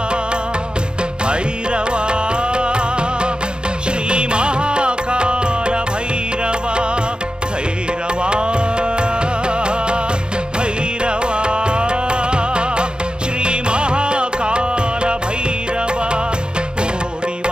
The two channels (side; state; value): left; late; 0.049 ms